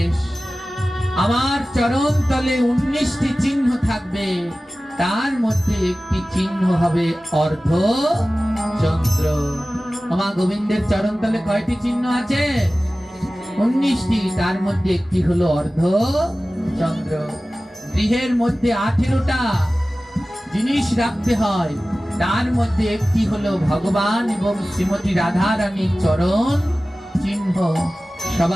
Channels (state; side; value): normal; both; correlation 0.96